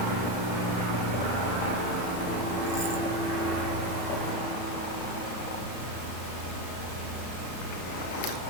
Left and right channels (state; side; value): late; right; 33 ms